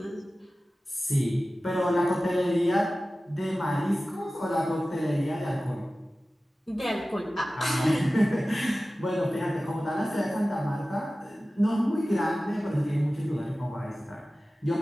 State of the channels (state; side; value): normal; both; correlation 0.96